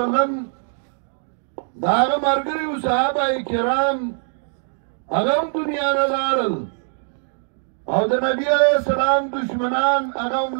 الله علیه وسلم د هغه ملګري وو صحابه کرام هغه هم دنیا نه لاړل او د نبي علیه السلام دشمنان هغه هم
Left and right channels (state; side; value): silent; left; 64 dB below the other